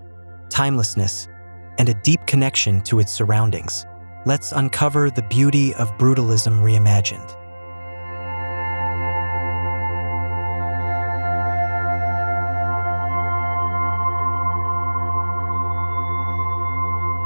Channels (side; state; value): both; inverted; correlation -1.00